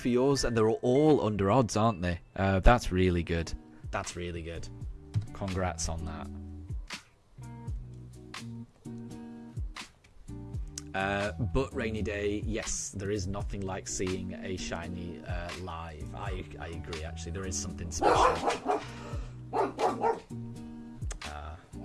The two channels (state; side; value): identical; both; correlation 1.00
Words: yours, and they're all under odds, aren't they? That's really good. That's really good. Congrats on that. But Rainy Day, yes, there is nothing like seeing a shiny live. I agree. Actually, there is something special.